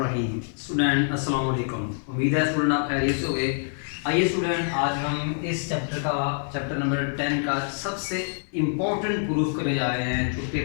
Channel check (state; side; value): silent; right; 56 dB below the other